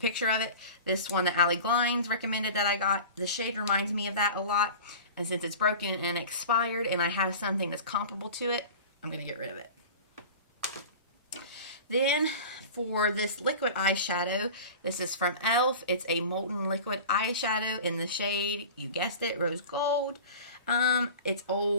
of it. This one that Allie Glines recommended that I got. The shade reminds me of that a lot. And since it's broken and expired and I have something that's comparable to it, I'm going to get rid of it. Then for this liquid eyeshadow, this is from e.l.f. It's a molten liquid eyeshadow in the shade, you guessed it, Rose Gold. It's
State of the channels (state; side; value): inverted; both; correlation -0.37